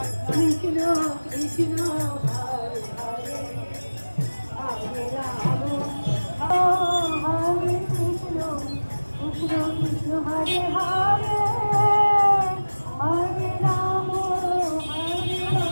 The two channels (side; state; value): both; inverted; correlation -1.00